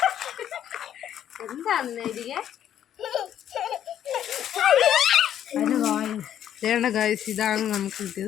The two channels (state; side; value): quieter; right; 10.4 dB